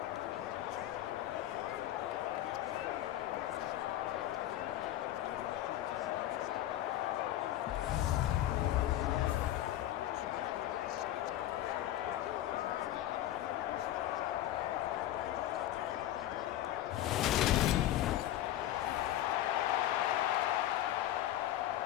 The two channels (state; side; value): quieter; right; 13.4 dB